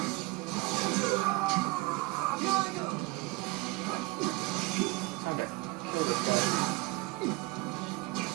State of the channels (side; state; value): left; quieter; 22.9 dB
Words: Time to kill this guy.